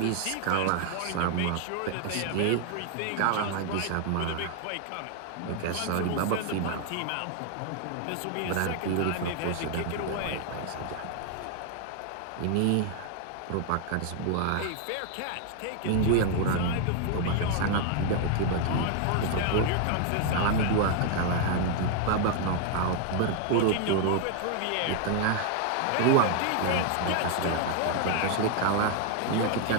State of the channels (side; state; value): both; different; correlation 0.00